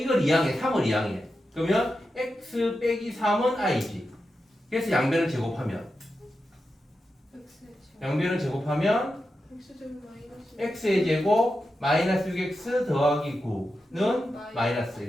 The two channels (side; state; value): both; normal; correlation 0.89